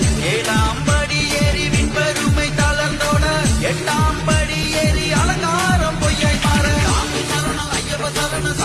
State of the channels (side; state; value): both; identical; correlation 1.00